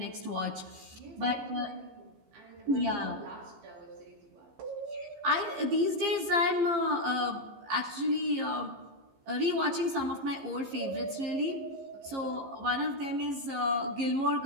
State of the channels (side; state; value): left; late; 15 ms